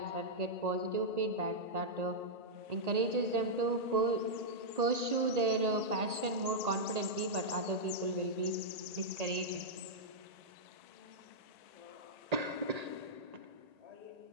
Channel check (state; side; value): late; left; 1.8 ms